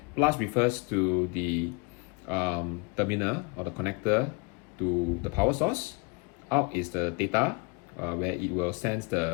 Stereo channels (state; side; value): quieter; right; 30.7 dB